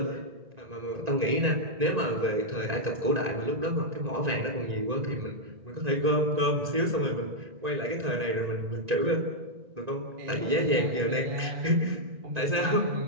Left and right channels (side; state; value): left; late; 1.9 ms